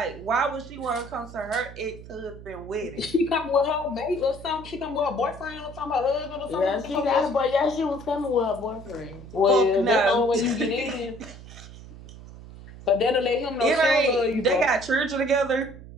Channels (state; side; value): noise; right; hum, 16 dB below the sound